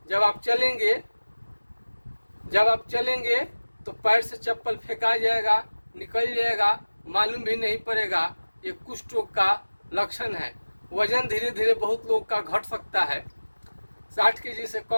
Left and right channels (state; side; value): inverted; both; correlation -1.00